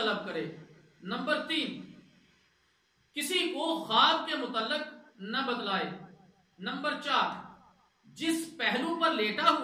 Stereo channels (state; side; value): identical; both; correlation 1.00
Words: کرے۔ نمبر 3، کسی کو خواب کے متعلق نہ بتلائے۔ نمبر 4، جس پہلو پر لیٹا